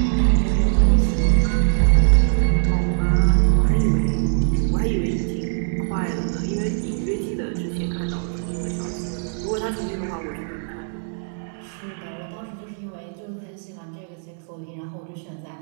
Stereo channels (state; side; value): silent; left; 64 dB below the other